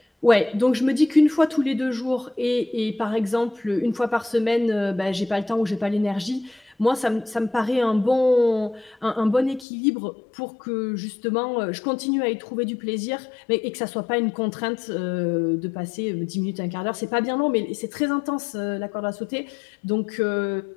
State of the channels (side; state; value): right; drops out; at 9.7 s